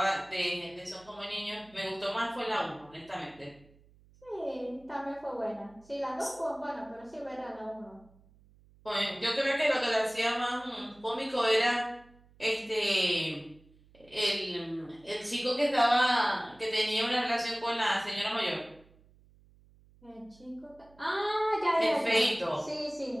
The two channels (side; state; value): right; noise; hum, 28 dB below the sound